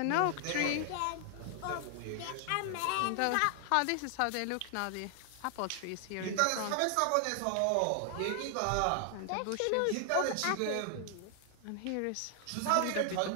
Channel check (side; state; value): both; different; correlation 0.00